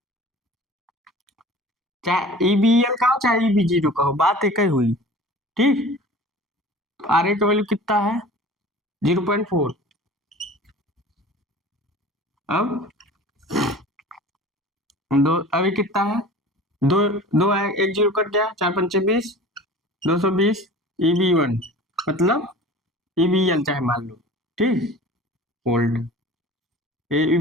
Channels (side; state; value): both; normal; correlation 0.41